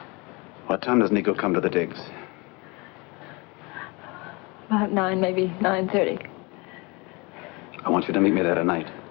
What time does Nico come to the digs? About 9, maybe 9:30. I want you to meet me there tonight.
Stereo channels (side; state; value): right; quieter; 26.9 dB